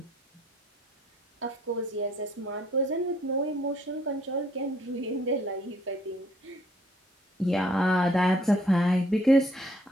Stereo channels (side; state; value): both; normal; correlation 0.63